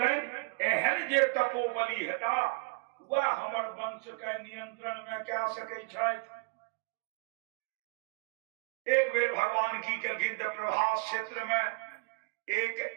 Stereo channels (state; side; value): quieter; left; 31.2 dB